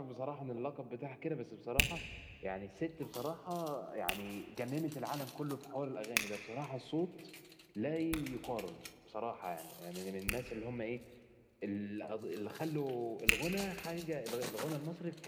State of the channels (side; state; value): both; identical; correlation 1.00